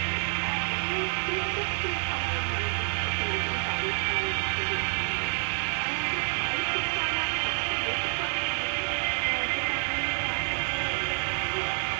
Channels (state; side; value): silent; left; 59 dB below the other